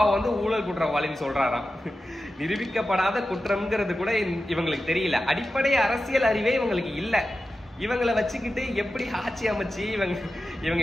வந்து ஊழல் குற்றவாளின்னு சொல்றாராம். நிரூபிக்கப்படாத குற்றம்ங்கிறது கூட இவங்களுக்கு தெரியல. அடிப்படை அரசியல் அறிவே இவங்களுக்கு இல்ல. இவங்களை வச்சுக்கிட்டு எப்படி ஆட்சி அமைச்சு இவங்க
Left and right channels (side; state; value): both; normal; correlation 0.92